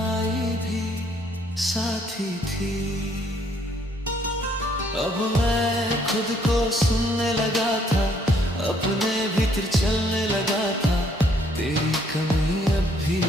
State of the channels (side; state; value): both; normal; correlation 0.66